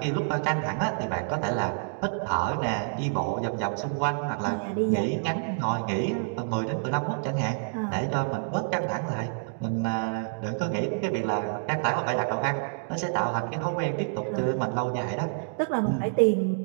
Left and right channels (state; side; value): silent; left; digital silence